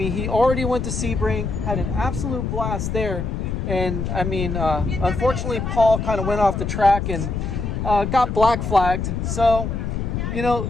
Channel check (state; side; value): noise; left; rumble, 3 dB below the sound